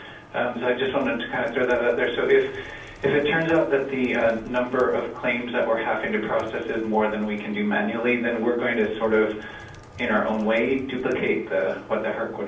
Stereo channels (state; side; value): identical; both; correlation 1.00